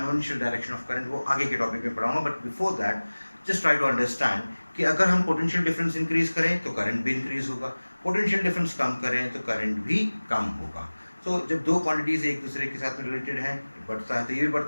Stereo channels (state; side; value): inverted; both; correlation -1.00